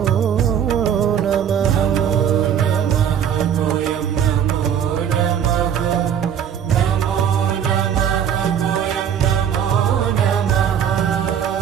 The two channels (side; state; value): left; quieter; 8.7 dB